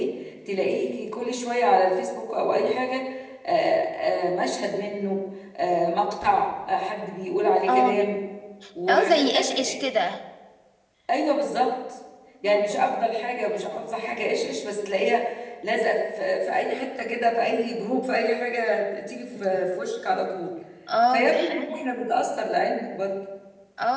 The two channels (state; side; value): identical; both; correlation 1.00